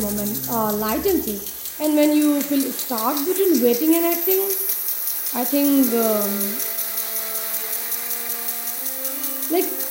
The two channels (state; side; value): identical; both; correlation 1.00